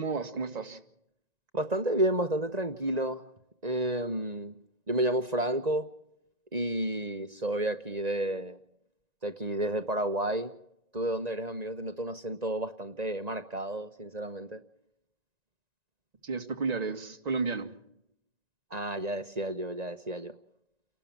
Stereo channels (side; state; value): left; late; 1.9 ms